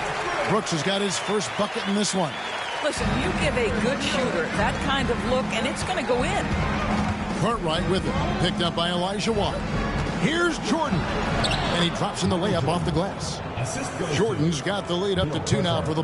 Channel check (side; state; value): both; identical; correlation 1.00